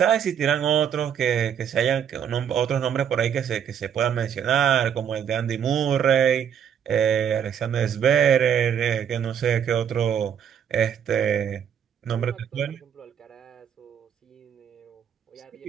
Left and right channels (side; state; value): left; quieter; 8.4 dB